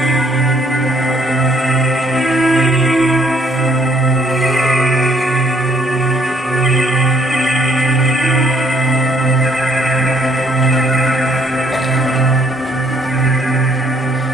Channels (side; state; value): both; normal; correlation 0.66